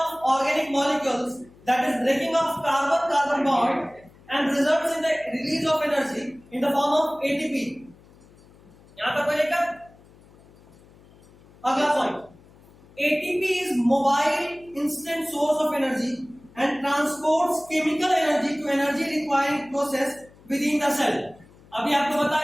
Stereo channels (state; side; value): noise; left; hum, 26 dB below the sound